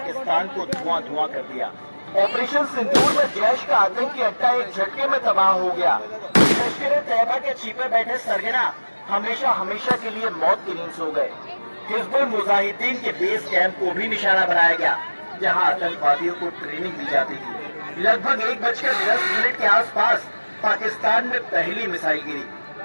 को धुआं कर दिया। ऑपरेशन सिंदूर में जैश का आतंकी अड्डा एक झटके में तबाह हो गया। लश्कर तैयबा के छिपे बैठे सरगना हमेशा के लिए मौत की नींद सो गए। हिजबुल मुजाहिदीन के बेस कैंप को भी निशाना बनाया गया, जहां आतंकवादियों को ट्रेनिंग दी जाती थी। लगभग 1:10 के आसपास पाकिस्तान में पहली मिसाइल गिरी।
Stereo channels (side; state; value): both; inverted; correlation -1.00